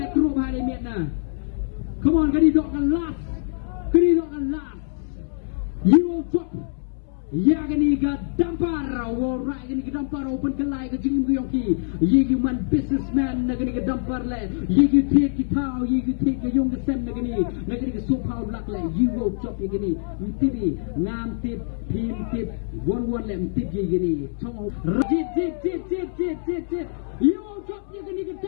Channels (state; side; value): silent; right; 62 dB below the other